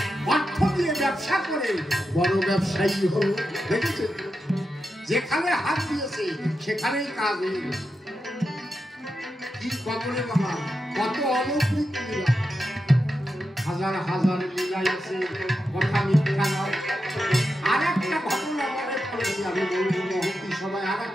অর্থ দিয়ে ব্যবসা করে বড় ব্যবসায়ী হল। দেখেছে, যেখানে হাত দিয়েছে সেখানেই কাজ হয়ে গেছে। কি কবরে বাবা, কত অলৌকিক লীলা, হাজার হাজার লীলা আছে, কথা মিথ্যা নয়। আর একটা ঘটনা মনে পড়েছে, আমি বলবো মহতি সবাই, আর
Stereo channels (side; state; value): both; normal; correlation 0.88